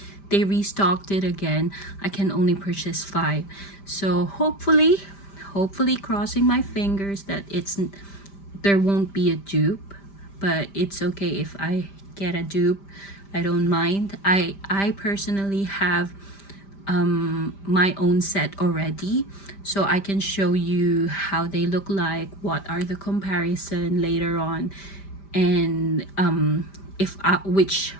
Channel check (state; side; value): late; right; 5.1 ms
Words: they restocked it again I can only purchase 5. So hopefully crossing my fingers that there won't be a dupe, but it's okay if I get a dupe. I don't mind. I personally have my own set already, so I can show you how they look like, what are the comparison later on, and if which